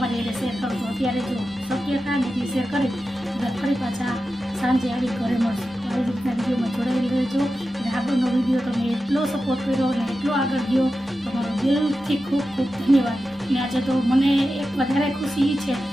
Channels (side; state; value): both; normal; correlation 0.92